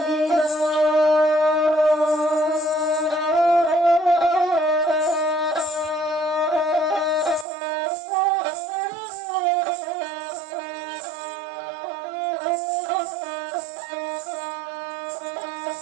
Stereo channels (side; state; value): left; drops out; at 7.5 s